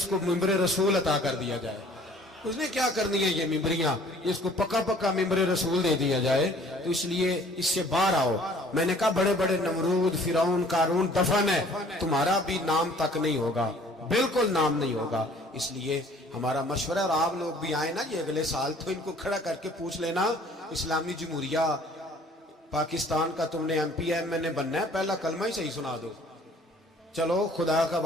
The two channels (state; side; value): normal; both; correlation 0.54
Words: کو ممبر رسول عطا کر دیا جائے، اس نے کیا کرنی ہے یہ ممبریاں جس کو پکا پکا ممبر رسول دے دیا جائے، تو اس لیے اس سے باہر آؤ۔ میں نے کہا بڑے بڑے نمرود، فرعون، قارون دفن ہے، تمہارا بھی نام تک نہیں ہوگا، بالکل نام نہیں ہوگا۔ اس لیے ہمارا مشورہ، اور آپ لوگ بھی آئیں نا یہ اگلے سال، تو ان کو کھڑا کر کے پوچھ لینا اسلامی جمہوریہ پاکستان کا تم نے MP بننا ہے، پہلا کلمہ ہی صحیح سنا دو، چلو خدا کا